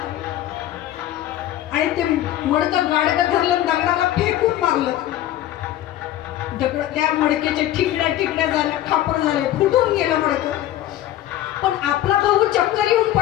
आणि ते मडकं गाडगं धरलं, दगडाला फेकून मारलं. दगड त्या मडक्याच्या ठिकड्या झाल्या, खापर झाले, फुटून गेलं मडकं. पण आपला भाऊ चक्कर येऊन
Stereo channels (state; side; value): quieter; right; 13.3 dB